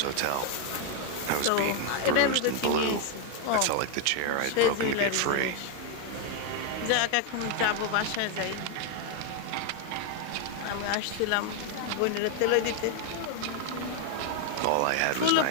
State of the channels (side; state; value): both; different; correlation 0.01